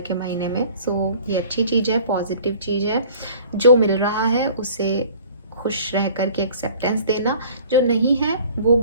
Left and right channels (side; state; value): both; inverted; correlation -0.49